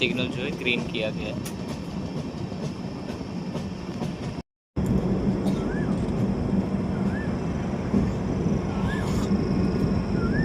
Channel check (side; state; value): both; identical; correlation 1.00